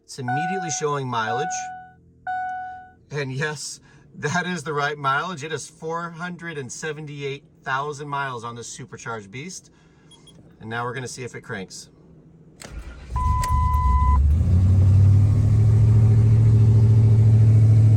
It's immediately showing mileage. And yes, that is the right mileage. It is 478,000 miles on this supercharged beast. And now we're going to see if it cranks.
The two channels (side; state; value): both; identical; correlation 1.00